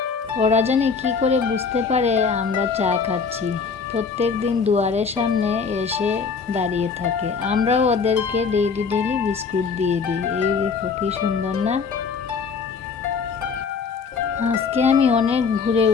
ওরা জানি কী করে বুঝতে পারে আমরা চা খাচ্ছি। প্রত্যেক দিন দুয়ারের সামনে এসে দাঁড়িয়ে থাকে। আমরাও ওদেরকে ডেইলি বিস্কুট দিয়ে দিই। এই দেখো কি সুন্দর না। আজকে আমি অনেক ভোরে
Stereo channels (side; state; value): right; quieter; 5.4 dB